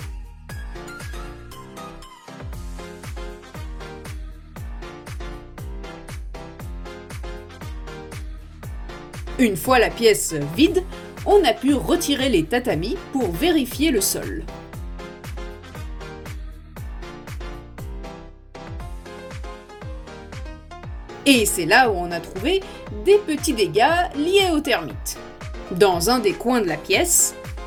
Une fois la pièce vide, on a pu retirer les tatamis pour vérifier le sol. Et c'est là où on a trouvé des petits dégâts liés aux termites. Dans un des coins de la pièce,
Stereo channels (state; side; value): identical; both; correlation 1.00